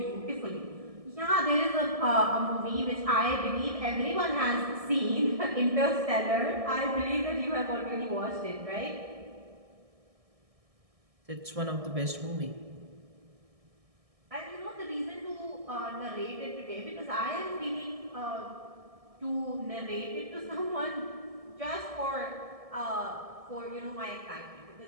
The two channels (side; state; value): left; late; 1.6 ms